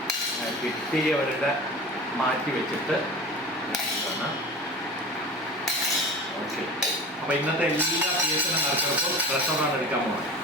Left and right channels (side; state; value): both; normal; correlation 0.35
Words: കിട്ടിയവരുടെ മാറ്റി വെച്ചിട്ട് ഓക്കെ. അപ്പൊ ഇന്നത്തെ എല്ലാ PSN നറുക്കെടുപ്പും റെസ്റ്റോറാണ് എടുക്കാൻ പോകുന്നത്.